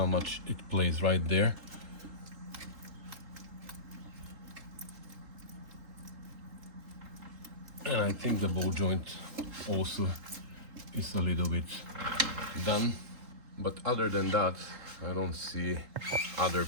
much it plays right there. And I think the ball joint also is a little bit done. But other than that, I don't see other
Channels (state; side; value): late; left; 3.8 ms